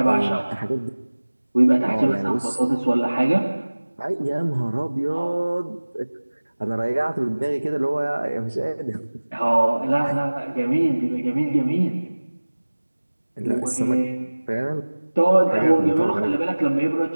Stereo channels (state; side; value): inverted; both; correlation -1.00